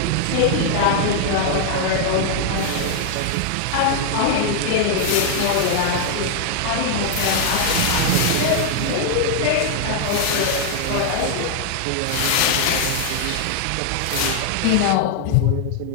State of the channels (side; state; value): both; different; correlation 0.00